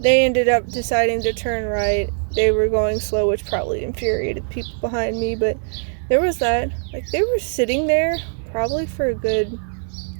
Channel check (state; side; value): silent; left; digital silence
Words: They ended up deciding to turn right. They were going slow, which probably infuriated people behind me. But there was that. Like, they were sitting there probably for a good